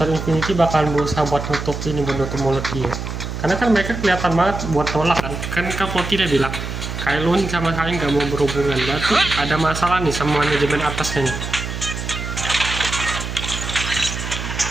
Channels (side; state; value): right; noise; hum, 6 dB below the sound